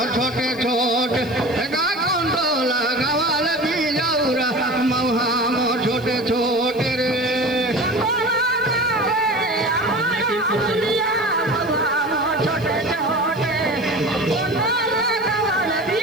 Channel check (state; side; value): noise; right; hiss, 24 dB below the sound